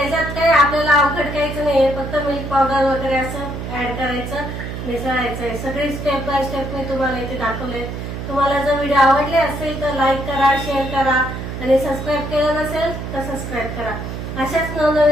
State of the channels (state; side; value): noise; right; hum, 6 dB below the sound